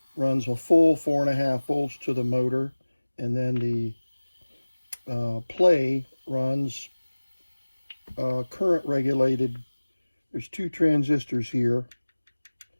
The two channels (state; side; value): inverted; both; correlation -1.00